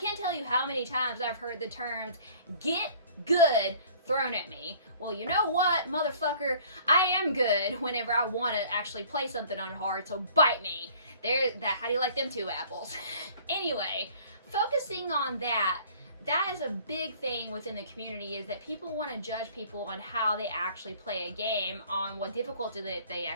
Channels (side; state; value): both; inverted; correlation -0.52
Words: tell you how many times I've heard the terms get good thrown at me. Well, you know what, motherfucker? I am good whenever I want to actually play something on hard, so bite me. How do you like them 2 apples? Anyway, focusing on that is a big thing within the community, is that people want to judge people on how they actually play a game, on what difficulty they